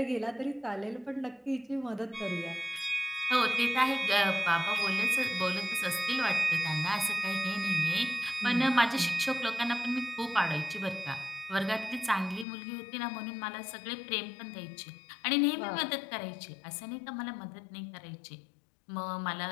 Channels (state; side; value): drops out; right; at 12.5 s